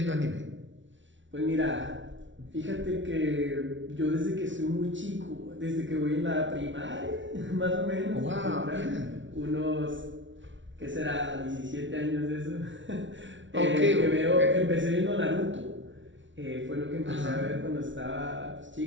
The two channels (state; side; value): late; left; 0.55 ms